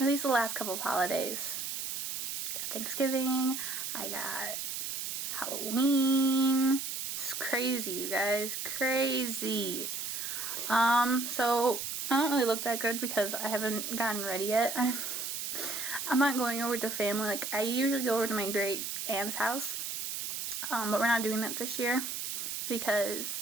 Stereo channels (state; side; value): noise; right; hiss, 4 dB below the sound